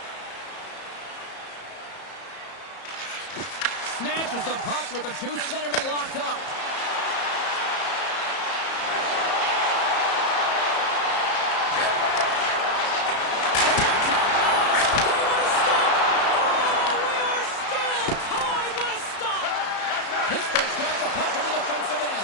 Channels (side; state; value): right; late; 34 ms